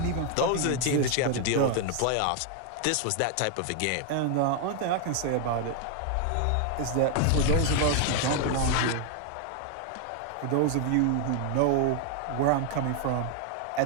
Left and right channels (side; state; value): both; different; correlation 0.00